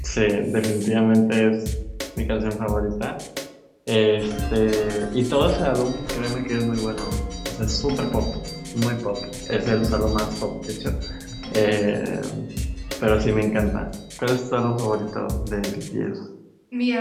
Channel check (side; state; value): both; identical; correlation 1.00